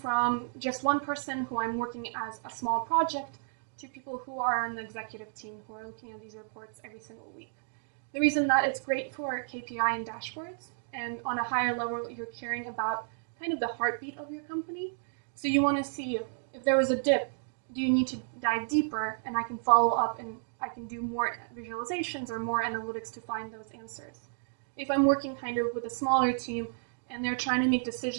just one person who I'm working as a small project to people who are on the executive team who are looking at these reports every single week. The reason that it's great for KPI and dashboards, and on a higher level, you're caring about kind of the heartbeat of your company. So you want to see if there was a dip, do you need to dive deeper, and I can follow up and I can do more visualizations or more analytics to find those answers. If I'm working kind of with a smaller team and they're trying to make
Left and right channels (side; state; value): left; silent; digital silence